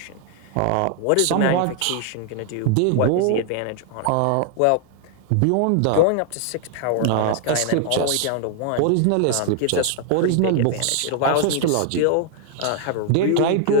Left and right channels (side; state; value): both; different; correlation 0.00